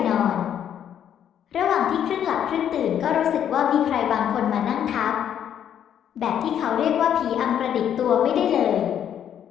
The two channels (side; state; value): right; quieter; 9.5 dB